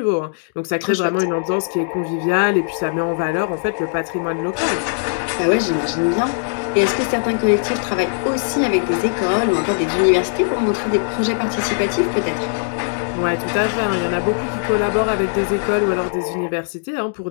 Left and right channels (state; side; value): silent; right; digital silence